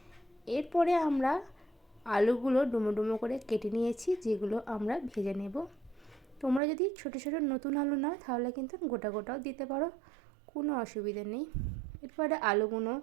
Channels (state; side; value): drops out; left; at 6.6 s